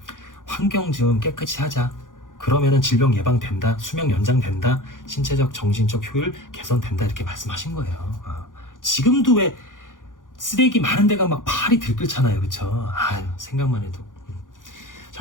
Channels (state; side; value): late; right; 0.88 ms